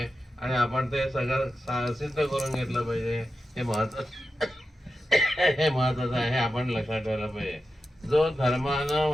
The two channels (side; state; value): both; normal; correlation 0.90